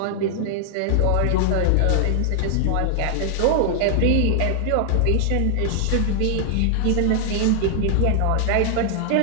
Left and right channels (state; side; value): different; both; correlation 0.00